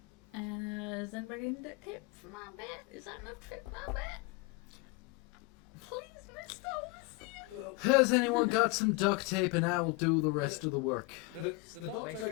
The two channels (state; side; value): quieter; right; 23.2 dB